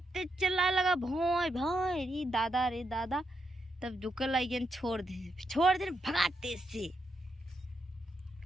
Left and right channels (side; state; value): both; normal; correlation 0.82